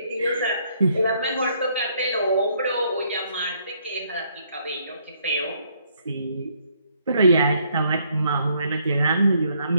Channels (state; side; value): inverted; both; correlation -0.69